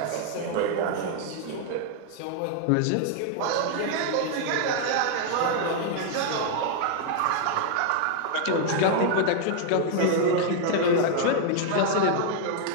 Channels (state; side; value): different; both; correlation 0.00